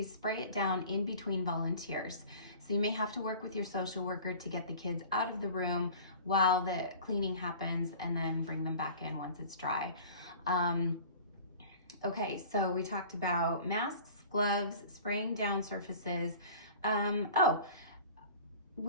spray it down in between volunteers. So you may have to work with your social worker to get the kids out of the room while the cleaning happens, and then bring them back in once it's dry. Okay, so we talked about masks, gloves, spraying down surfaces.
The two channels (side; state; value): both; inverted; correlation -0.43